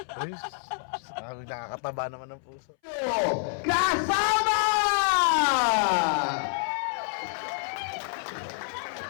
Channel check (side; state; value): right; silent; 60 dB below the other